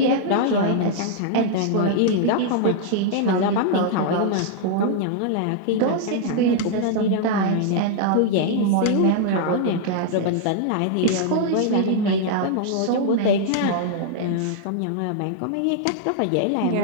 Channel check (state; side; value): different; both; correlation -0.01